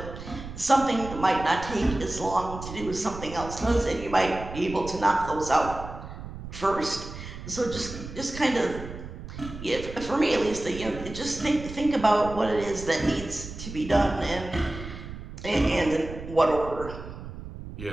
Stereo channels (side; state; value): right; noise; rumble, 11 dB below the sound